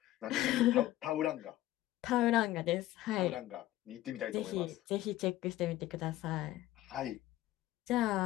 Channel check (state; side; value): quieter; right; 15.3 dB